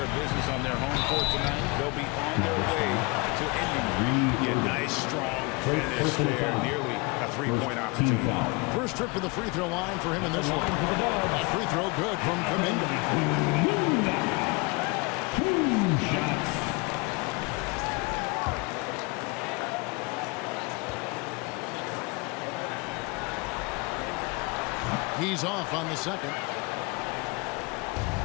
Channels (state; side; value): quieter; right; 27.7 dB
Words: of business on their home court tonight, they'll be on their way to ending it. Yeah, nice, strong finish there, nearly a three-point opportunity. First trip to the free throw line for him in this one. That free throw good from Kuminga. 2 shots. He's off on the second.